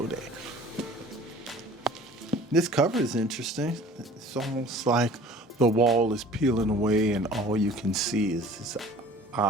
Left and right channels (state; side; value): normal; both; correlation 0.47